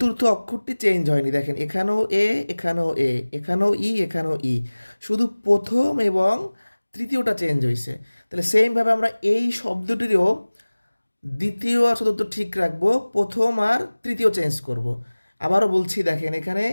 অক্ষরটি চেঞ্জ হয়নি। দেখেন, এখানেও এ, এখানেও এ, এখানেও ই, এখানেও ই, শুধু প্রথম এবং তৃতীয়টা চেঞ্জ হয়েছে। তাহলে সেমভাবে আমরা এই শব্দটিরও দ্বিতীয় আর চতুর্থ ঠিক রাখবো, প্রথম আর তৃতীয় চেঞ্জ করব। আবারও বলছি, দেখেন এখানে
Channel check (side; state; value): both; inverted; correlation -1.00